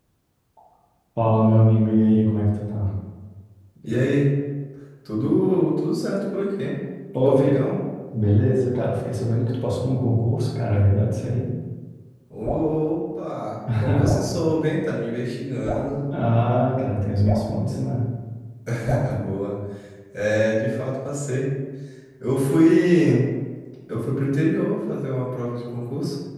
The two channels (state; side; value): identical; both; correlation 1.00